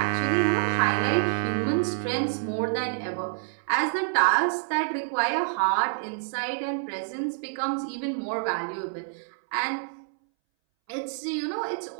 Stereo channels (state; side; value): silent; left; 60 dB below the other